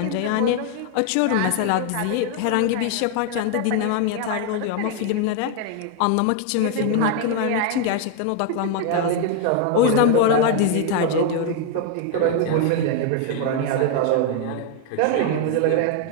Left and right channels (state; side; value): different; both; correlation 0.01